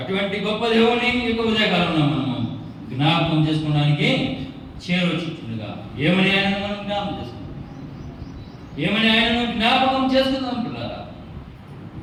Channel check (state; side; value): identical; both; correlation 1.00